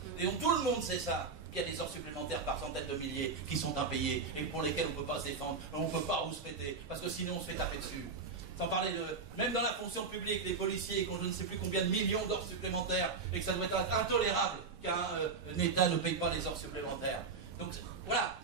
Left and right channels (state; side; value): quieter; left; 4.7 dB